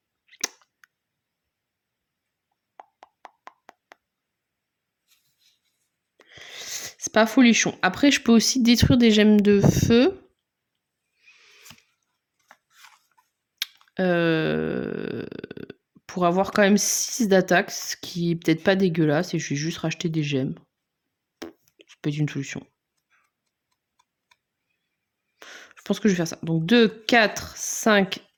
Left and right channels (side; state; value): both; identical; correlation 1.00